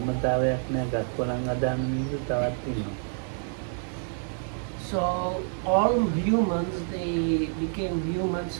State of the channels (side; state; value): left; silent; 59 dB below the other